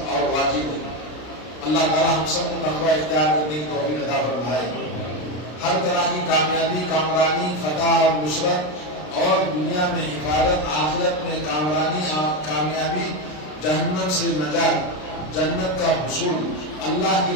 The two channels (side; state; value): right; late; 33 ms